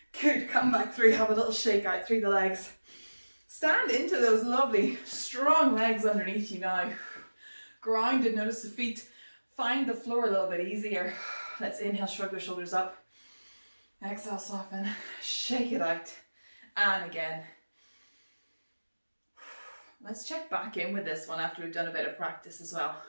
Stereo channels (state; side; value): inverted; both; correlation -1.00